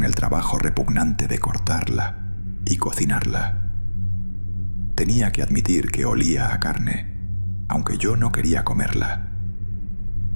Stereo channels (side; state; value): both; inverted; correlation -1.00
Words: el trabajo repugnante de cortarla y cocinarla. Tenía que admitir que olía a carne, aunque yo no quería comerla.